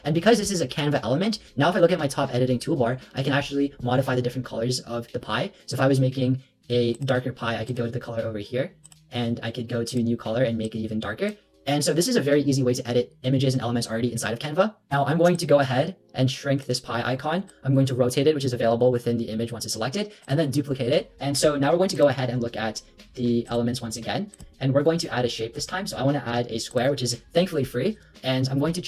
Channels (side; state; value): both; identical; correlation 1.00